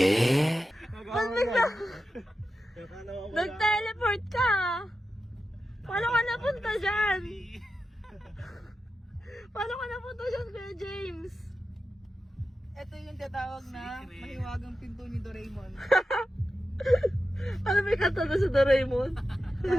Ba't bigla? Nag-teleport ka? Paano ka napunta dyan? Paano ka napunta dyan, Kuya James? Ito yung tatawag na mahiwagang pinto ni Doraemon. Ano may kanta na sa Doraemon?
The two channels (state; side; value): normal; both; correlation 0.91